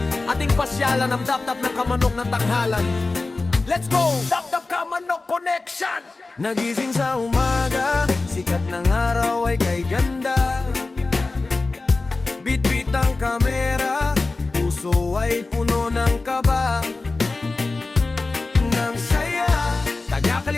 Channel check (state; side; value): quieter; right; 3.5 dB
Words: ating pasyalan ang dap-dap ng kamanok ng tanghalan. Let's go! Dap-dap Kamanok Connection! Nagising sa umaga, sikat ng araw ay kay ganda. Bit-bit ang kamera, puso ay puno ng kaba. Nang saya,